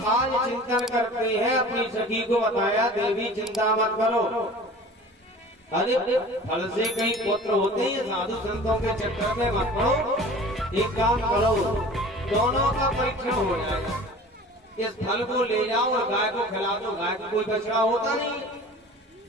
आज चिंतन करते हैं, अपनी सखी को बताया देवी चिंता मत करो, अरे फल से कई पुत्र होते हैं, साधु संतों के चक्कर में मत पड़ो। एक काम करो, दोनों का परीक्षण हो जाएगा, इस फल को ले जाओ और गाय को खिला दो। गाय को कोई बछड़ा होता नहीं,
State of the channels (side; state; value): both; normal; correlation 0.42